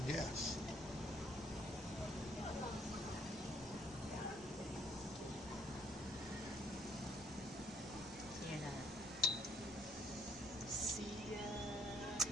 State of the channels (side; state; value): both; normal; correlation 0.65